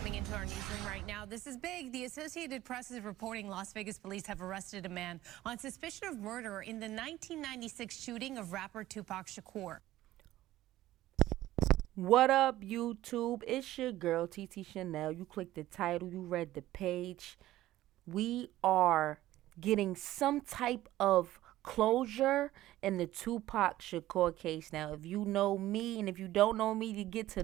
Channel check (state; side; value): quieter; left; 15.1 dB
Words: into our newsroom right now. This is big. The Associated Press is reporting Las Vegas police have arrested a man on suspicion of murder in the 1996 shooting of rapper Tupac Shakur. What up, YouTube? It's your girl, TT Shanell. You clicked the title, you read the page. We are getting some type of closure in the Tupac Shakur case. Now, if you know me, and if you don't know me, you get to